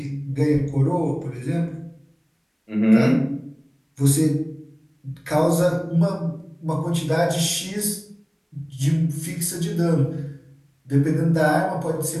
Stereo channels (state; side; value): identical; both; correlation 1.00